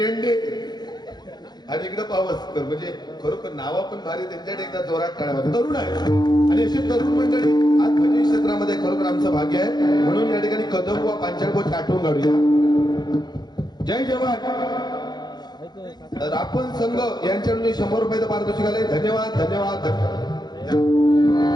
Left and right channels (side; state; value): right; late; 0.20 ms